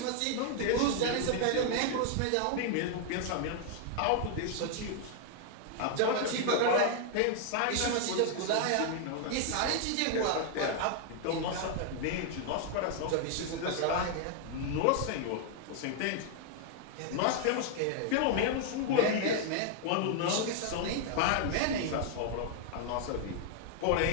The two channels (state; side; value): different; both; correlation 0.00